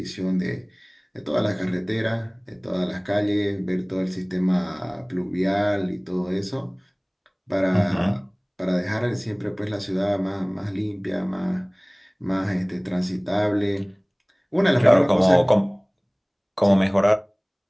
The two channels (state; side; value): identical; both; correlation 1.00